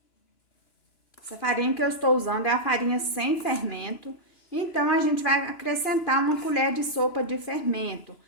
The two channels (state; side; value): late; right; 2.9 ms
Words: Essa farinha que eu estou usando é a farinha sem fermento, então a gente vai acrescentar uma colher de sopa de fermento.